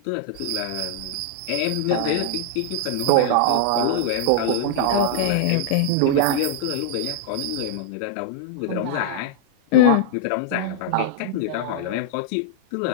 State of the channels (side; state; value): both; different; correlation -0.01